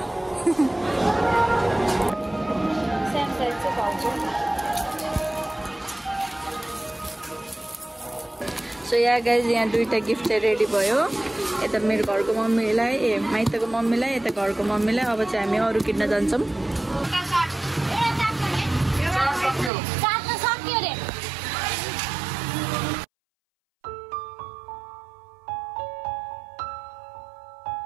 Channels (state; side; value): drops out; left; at 19.7 s